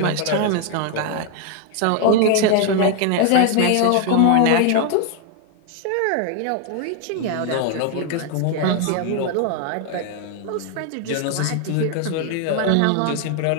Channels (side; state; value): both; different; correlation 0.00